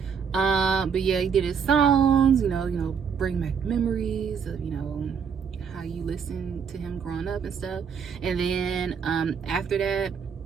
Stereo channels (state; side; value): quieter; left; 6.6 dB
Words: But yeah, he did his songs, you know, bring back memories of, you know, how you listened to him growing up and stuff. And then after that,